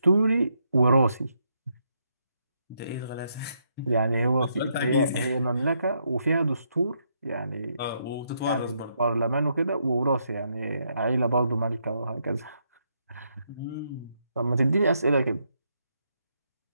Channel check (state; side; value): inverted; both; correlation -0.77